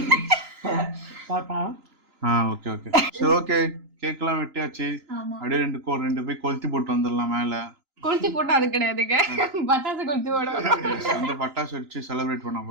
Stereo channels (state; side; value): late; left; 3.9 ms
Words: ஓகே ஓகே சரி ஓகே கேக்லாம் வெட்டியாச்சு. அப்படியே ரெண்டு போய் கொளுத்தி போட்டு வந்துடலாம். மேல கொளுத்தி போட்டா அது கிடையாதுங்க. பட்டாசு கொளுத்தி போடுவோம். அந்த பட்டாசு வச்சு செலிப்ரேட் பண்ண